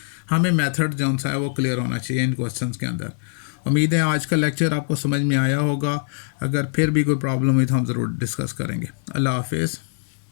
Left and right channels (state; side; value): silent; right; digital silence